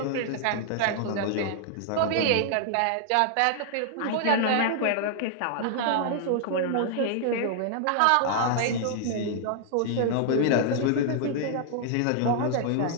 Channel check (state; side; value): different; both; correlation -0.01